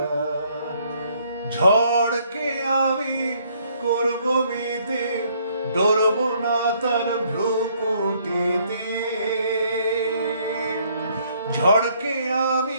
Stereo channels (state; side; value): inverted; both; correlation -0.66